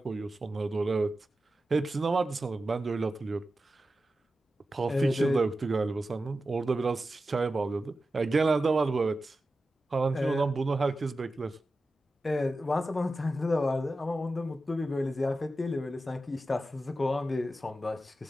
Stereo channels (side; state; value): both; normal; correlation 0.92